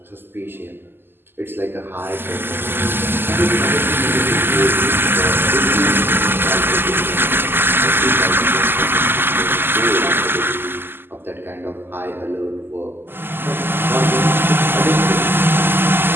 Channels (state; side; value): late; left; 0.10 ms